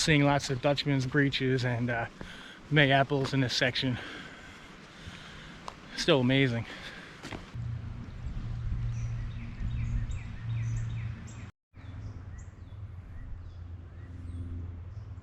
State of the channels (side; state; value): both; identical; correlation 1.00